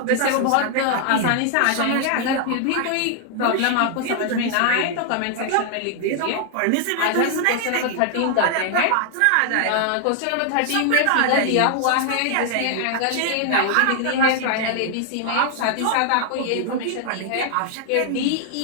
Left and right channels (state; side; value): different; both; correlation 0.00